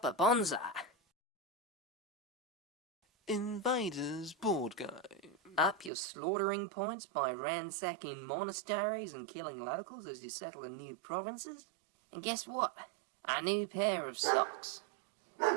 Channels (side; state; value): left; drops out; at 5.9 s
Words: bonsai. Invaders board game. Up your slaughtering points by ransacking monasteries and killing locals as you settle in new provinces. And guess what? A new pair of socks.